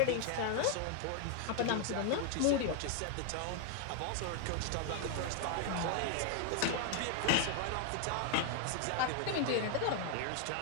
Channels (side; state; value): both; different; correlation 0.00